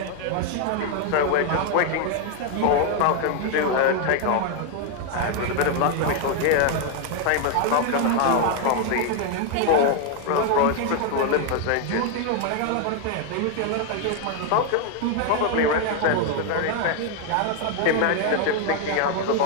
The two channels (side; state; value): both; different; correlation 0.01